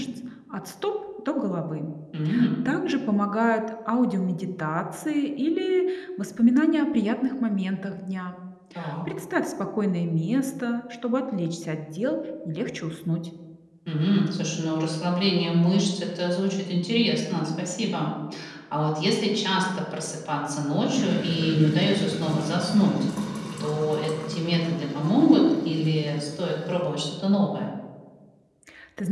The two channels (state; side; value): identical; both; correlation 1.00